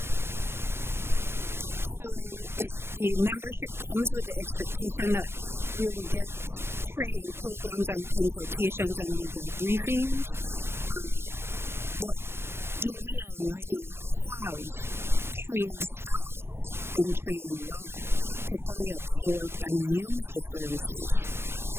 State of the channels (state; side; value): late; left; 0.12 ms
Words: So the membership comes with the expectation that we will get training programs and consultations and legal briefings, but do we already have trained staff in trade law to fully absorb and use the services?